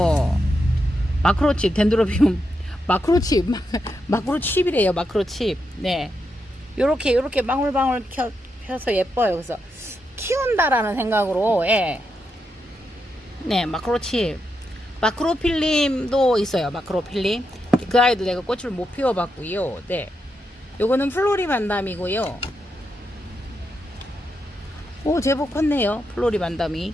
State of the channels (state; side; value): normal; both; correlation 0.84